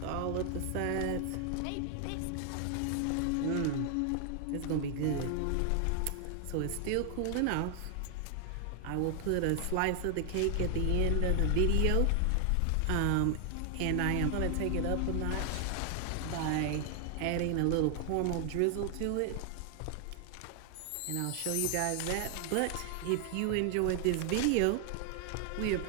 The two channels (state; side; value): different; both; correlation 0.00